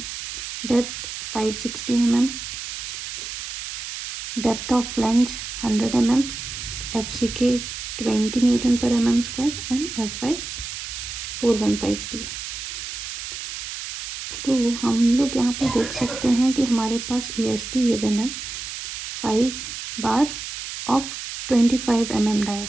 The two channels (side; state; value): right; noise; hiss, 7 dB below the sound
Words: Depth 560 mm. Depth of flange 100 mm. FCK 20 Newton per mm square and FI 415 steel. तो हम लोग यहाँ पर देख सकते हैं कि हमारे पास EST गिवन है 5 bar of 25 mm dia.